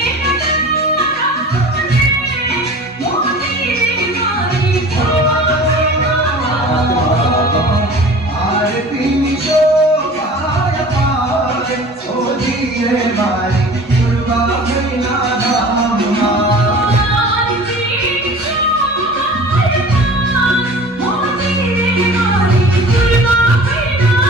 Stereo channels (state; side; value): normal; both; correlation 0.42